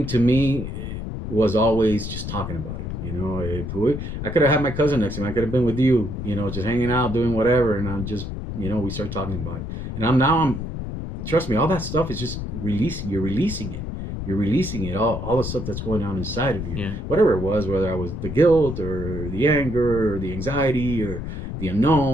to me, it was always just talking about it. You know, I could have had my cousin next to me. I could have been with you, you know, just hanging out, doing whatever. And I'm just, you know, we start talking about it. And I'm trust me, all that stuff is just releasing. You're releasing it. You're releasing it, all the stuff that's going on inside of you. Yeah. Whatever it was, whether I was the guilt or the anger or the anxiety or the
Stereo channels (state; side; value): noise; left; rumble, 6 dB below the sound